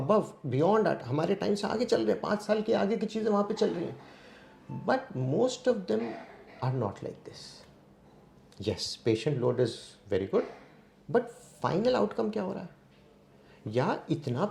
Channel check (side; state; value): both; identical; correlation 1.00